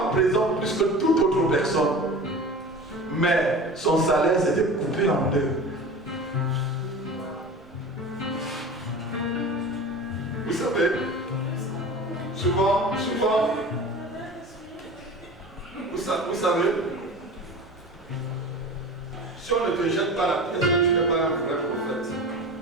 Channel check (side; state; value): right; noise; rumble, 28 dB below the sound